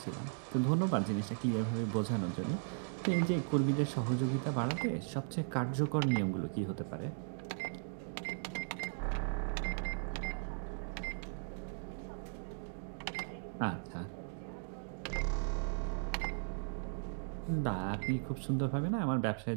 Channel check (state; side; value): silent; left; digital silence